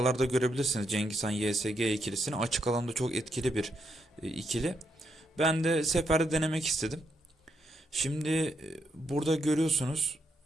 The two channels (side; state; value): both; normal; correlation 0.79